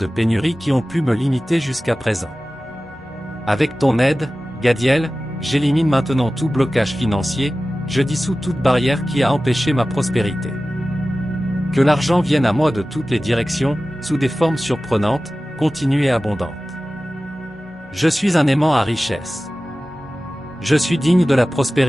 pénurie qui ont pu me limiter jusqu'à présent. Avec ton aide, Gadiel, j'élimine maintenant tout blocage financier, je dissous toute barrière qui a empêché ma prospérité. Que l'argent vienne à moi de toutes les directions, sous des formes surprenantes, continues et abondantes. Je suis un aimant à richesse. Je suis digne de la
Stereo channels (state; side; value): normal; both; correlation 0.96